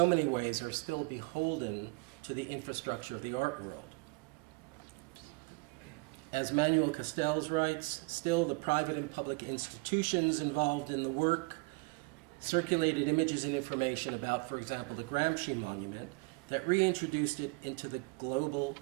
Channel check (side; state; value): left; quieter; 28.2 dB